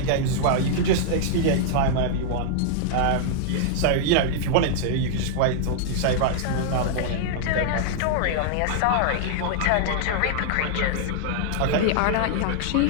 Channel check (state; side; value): different; both; correlation -0.01